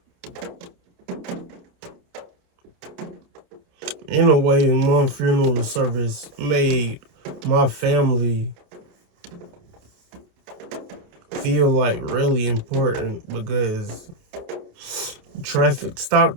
in a way, my funeral service made my family feel like really important because traffic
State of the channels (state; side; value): late; left; 28 ms